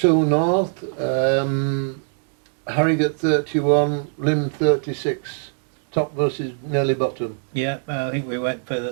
North, Harrogate 31, Lim 36, top versus nearly bottom. Yeah, I think we went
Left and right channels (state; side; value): silent; left; 64 dB below the other